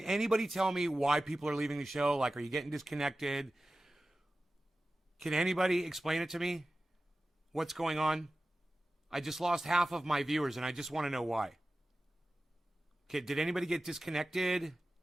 anybody tell me why people are leaving the show? Like, are you getting disconnected? Can anybody explain it to me? What's going on? I just lost half of my viewers, and I just want to know why. Okay, did anybody get disconnected?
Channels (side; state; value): both; normal; correlation 0.95